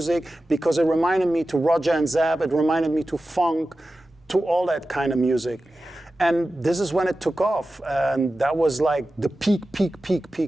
because it reminded me to Roger and Zab, it reminded me to funk, to all that kind of music. And this is when it took off, and that was like the peak.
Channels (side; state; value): both; normal; correlation 0.94